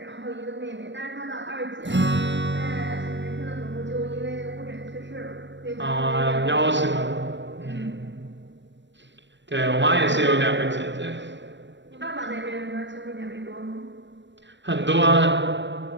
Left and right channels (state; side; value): late; left; 0.53 ms